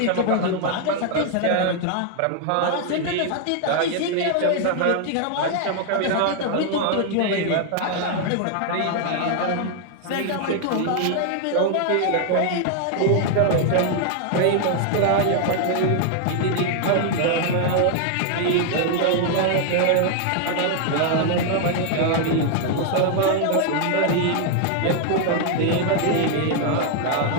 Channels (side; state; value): both; different; correlation 0.00